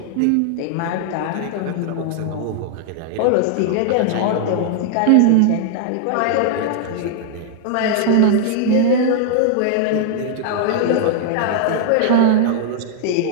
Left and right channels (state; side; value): different; both; correlation 0.00